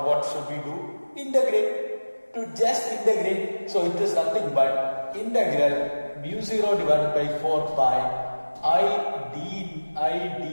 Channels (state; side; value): inverted; both; correlation -1.00